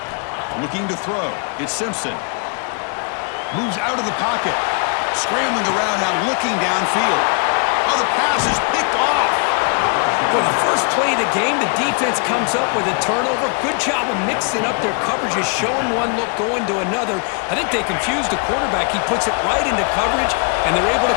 Looking to throw. It's Simpson. Moves out of the pocket. Scrambling around now, looking downfield. Oh, the pass is picked off. For the first play of the game, the defense comes up with a turnover. Good job of mixing up their coverages, showing one look, going to another. I think they confused the quarterback. He puts it right into coverage, and they're able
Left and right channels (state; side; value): quieter; right; 37.4 dB